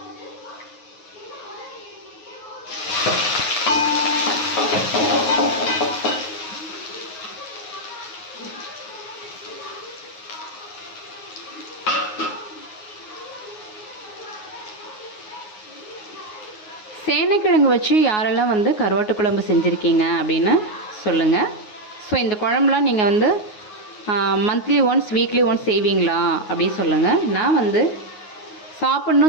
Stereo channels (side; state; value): right; late; 9.5 ms